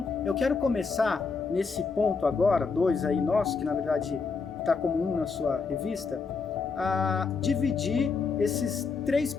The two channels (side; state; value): right; quieter; 4.9 dB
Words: eu quero começar nesse ponto agora, 2 aí nosso, que na verdade está como 1 na sua revista, a dividir esses 3